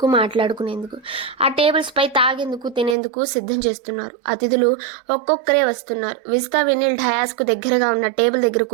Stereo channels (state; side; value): drops out; left; at 3.0 s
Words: మాట్లాడుకునేందుకు. ఆ టేబుల్స్ పై తాగేందుకు, తినేందుకు సిద్ధం చేస్తున్నారు. అతిథులు ఒక్కొక్కరే వస్తున్నారు. విజిత, వినీల్ డయాస్కు దగ్గరగా ఉన్న టేబుల్ దగ్గర